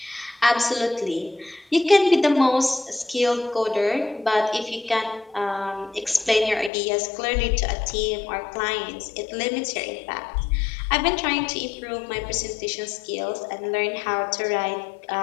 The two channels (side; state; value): right; drops out; at 6.7 s